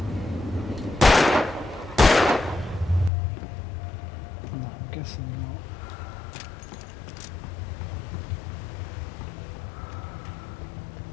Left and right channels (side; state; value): right; drops out; at 3.1 s